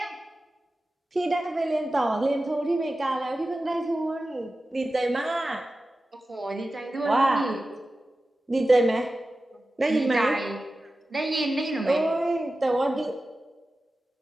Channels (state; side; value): normal; both; correlation 0.94